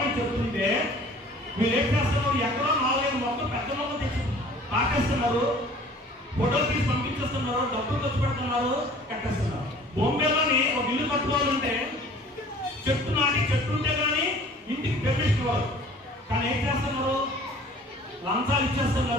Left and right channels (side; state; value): both; normal; correlation 0.49